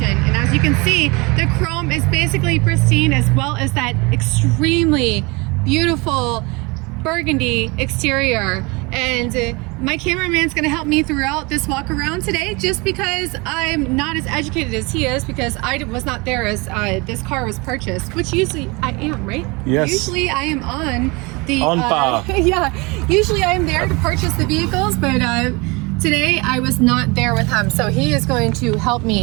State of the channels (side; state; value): left; quieter; 26.6 dB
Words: and as you can see, the chrome is basically pristine, as well as that extremely beautiful burgundy exterior. And my cameraman's gonna help me throughout this walk around today, just because I'm not as educated as he is, because I was not there as this car was purchased, which usually I am, right? Yes. Usually I am on the bar. yeah, usually I am there to purchase the vehicles, but today I was not there with him, so he is going to help